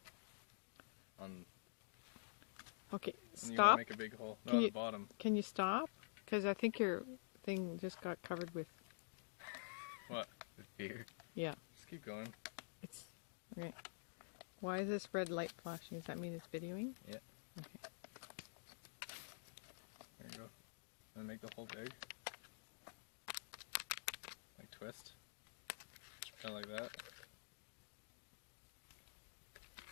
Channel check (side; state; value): right; silent; digital silence